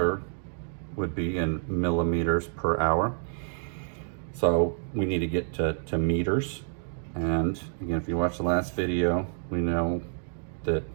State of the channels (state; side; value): silent; left; 59 dB below the other